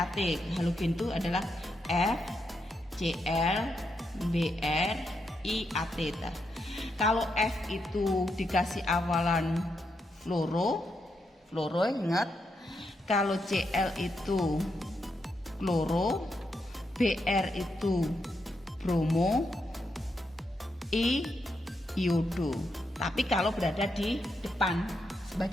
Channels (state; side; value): normal; both; correlation 0.82